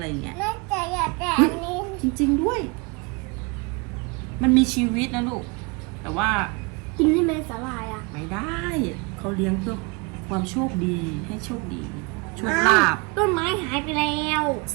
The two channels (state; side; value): quieter; left; 29.5 dB